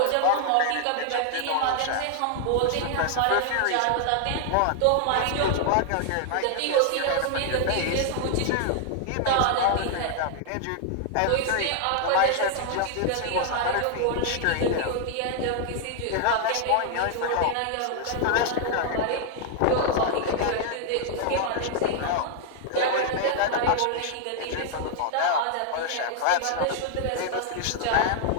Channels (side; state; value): both; different; correlation 0.00